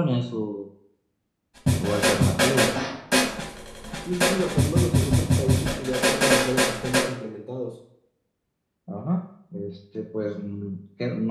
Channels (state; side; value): identical; both; correlation 1.00